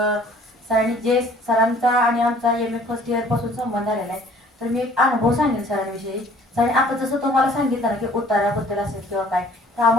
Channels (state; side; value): normal; both; correlation 0.54